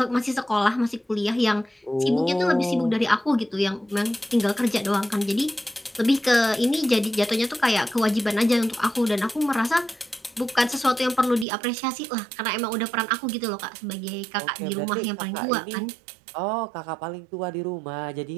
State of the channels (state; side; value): drops out; left; at 11.5 s